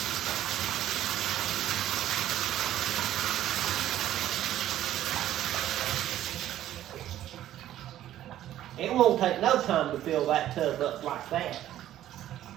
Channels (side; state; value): left; quieter; 12.6 dB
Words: It won't take no time to fill that tub up like that.